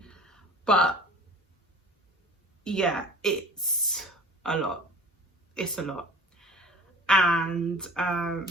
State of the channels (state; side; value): normal; both; correlation 0.43